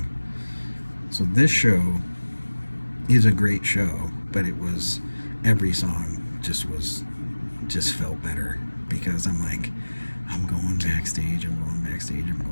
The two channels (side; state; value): both; inverted; correlation -1.00